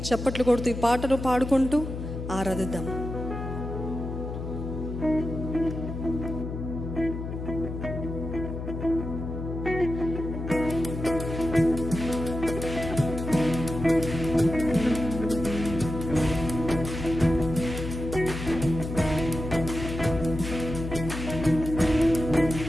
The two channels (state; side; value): noise; left; hum, 6 dB below the sound